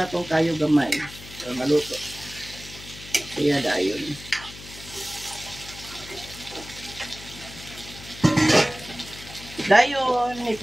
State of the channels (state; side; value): noise; left; hum, 16 dB below the sound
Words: itong kayo gamay. So, maluto. Kaya dayon. Dayon,